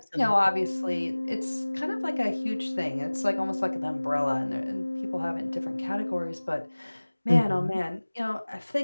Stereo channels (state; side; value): inverted; both; correlation -1.00